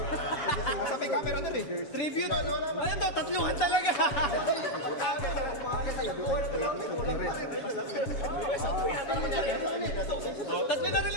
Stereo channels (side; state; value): right; late; 6.9 ms